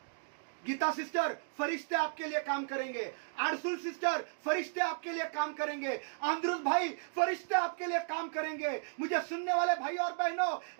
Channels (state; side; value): silent; left; digital silence